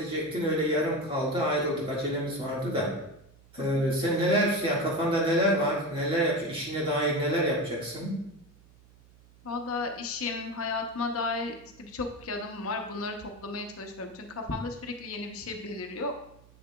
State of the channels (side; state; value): right; noise; hum, 26 dB below the sound